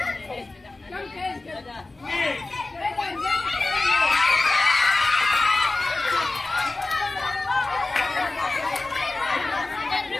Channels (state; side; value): quieter; right; 3.2 dB